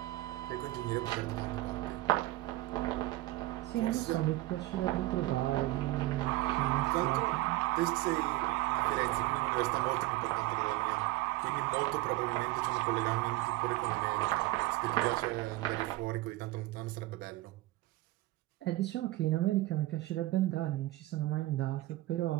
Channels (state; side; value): quieter; left; 17.9 dB